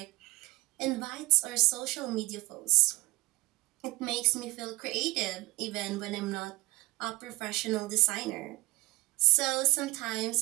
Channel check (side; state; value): left; quieter; 21.2 dB